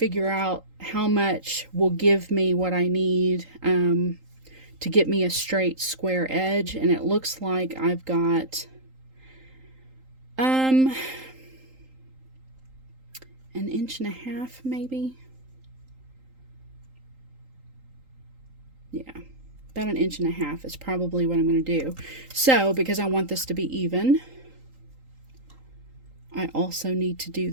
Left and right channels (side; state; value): left; late; 3.8 ms